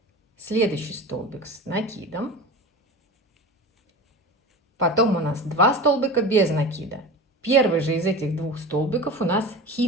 Следующий столбик с накидом. Потом у нас 2 столбика без накида. Первый же из этих 2 столбиков у нас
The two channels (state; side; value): normal; both; correlation 0.32